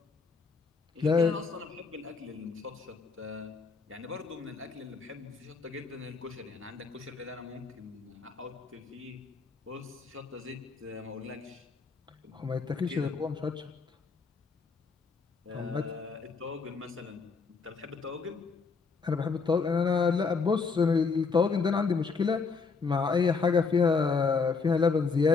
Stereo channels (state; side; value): quieter; right; 4.7 dB